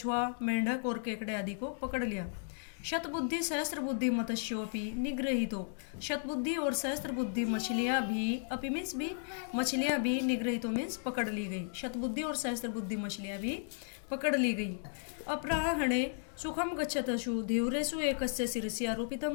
मेंढक और केकड़े आदि को पकड़ लिया। शतबुद्धि सहस्त्र बुद्धि मत्स्योपि निगृहीतो, शतबुद्धि और सहस्त्र बुद्धि मछलियाँ भी, अपि मीन्स भी, मछलियाँ भी, निगृहीतो मीन्स पकड़ ली गई, शतबुद्धि और सहस्त्र बुद्धि मछलियाँ भी पकड़ ली गई। अपराह्णे सुखम गच्छतशु धीव्रेषु एकस्य शिरसि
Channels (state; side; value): silent; right; digital silence